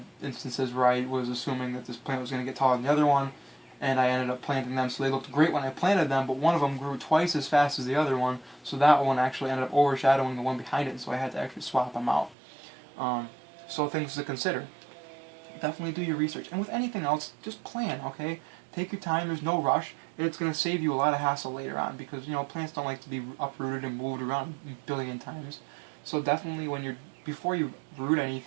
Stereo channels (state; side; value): drops out; left; at 12.4 s